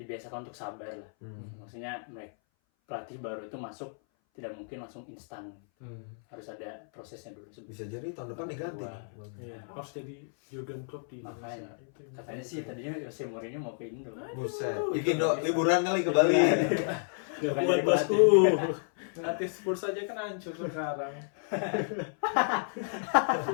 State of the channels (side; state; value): right; silent; 57 dB below the other